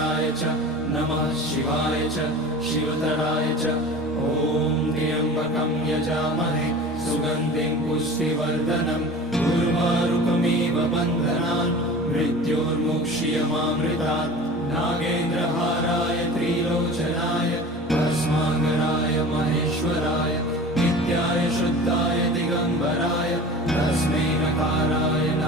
च नमः शिवाय च शिवतराय च। ओम त्र्यंबकं यजामहे सुगंधिं पुष्टिवर्धनम् उर्वारुकमिव बन्धनान् मृत्योर्मुक्षीयमामृतात्। नागेन्द्रहाराय त्रिलोचनाय भस्मांगराय महेश्वराय नित्याय शुद्धाय दिगंबराय तस्मै नकाराय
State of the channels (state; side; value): normal; both; correlation 0.38